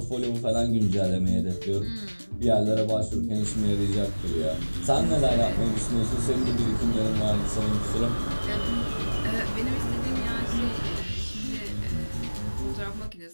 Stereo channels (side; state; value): both; inverted; correlation -1.00